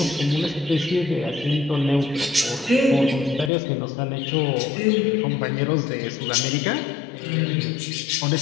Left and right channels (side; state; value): right; drops out; at 3.5 s